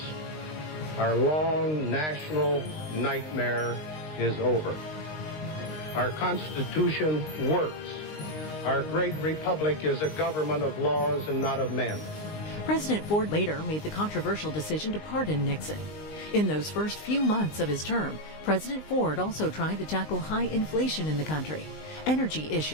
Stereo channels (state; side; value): late; right; 19 ms